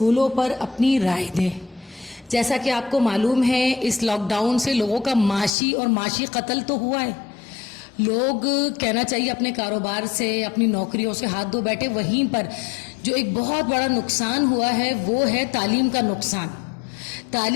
پر اپنی رائے دیں۔ جیسا کہ آپ کو معلوم ہے اس لاک ڈاؤن سے لوگوں کا معاشی قتل تو ہوا ہے۔ لوگ کہنا چاہیے اپنے کاروبار سے اپنی نوکریوں سے ہاتھ دھو بیٹھے۔ وہیں پر جو ایک بہت بڑا نقصان ہوا ہے وہ ہے تعلیم کا نقصان۔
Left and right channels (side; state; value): right; drops out; at 5.6 s